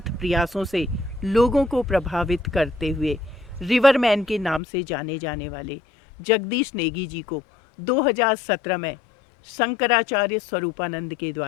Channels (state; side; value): drops out; right; at 4.6 s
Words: प्रयासों से लोगों को प्रभावित करते हुए रिवरमैन के नाम से जाने जाने वाले जगदीश नेगी जी को 2017 में शंकराचार्य स्वरूपानंद के